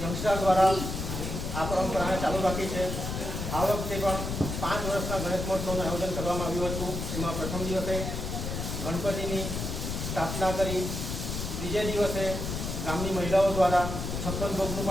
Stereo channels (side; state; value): left; noise; rumble, 4 dB below the sound